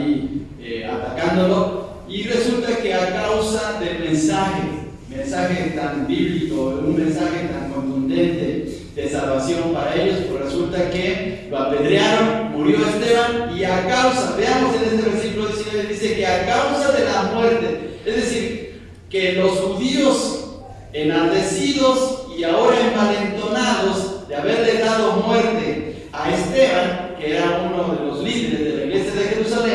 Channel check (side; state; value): both; identical; correlation 1.00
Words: atacándolo. Y resulta que a causa del mensaje tan bíblico, un mensaje tan contundente de salvación para ellos, pues resulta que lo apedrearon, murió Esteban, y a causa, veamos en este versículo 19, dice que a causa de la muerte, es decir, que los judíos enardecidos y ahora envalentonados de haberle dado muerte a Esteban, que era uno de los líderes de la iglesia de